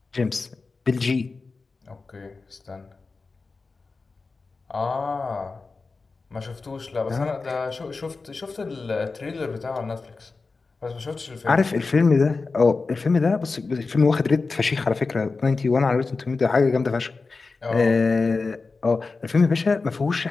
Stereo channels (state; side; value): quieter; right; 4.1 dB